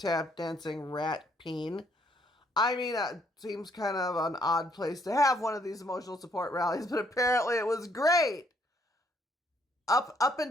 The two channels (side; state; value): both; normal; correlation 0.68